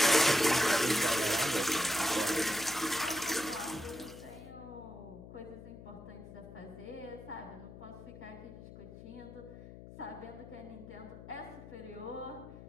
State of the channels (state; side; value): noise; left; hum, 15 dB below the sound